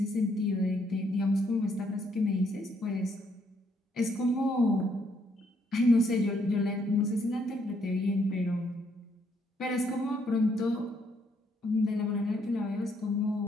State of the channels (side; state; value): both; normal; correlation 0.72